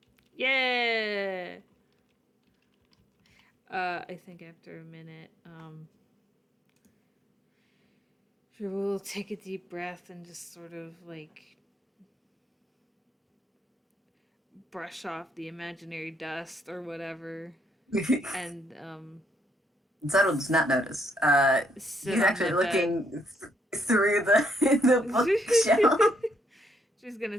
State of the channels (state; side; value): normal; both; correlation 0.74